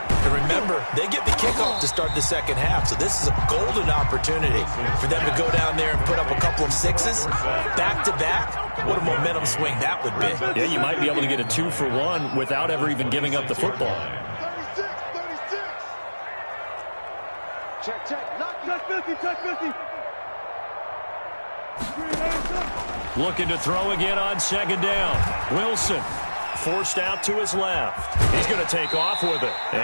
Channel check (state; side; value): inverted; both; correlation -1.00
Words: And remember, they get the kickoff to start the second half, so this is a golden opportunity for them to go down there and put up a couple of sixes back-to-back. What a momentum swing that would be. Yeah, you might be able to get a 2-for-1 without ever even giving up the football. 36. Check. Touch 50. Looking to throw again on 2nd down. Wilson forced out to his left. He's going to take off with it.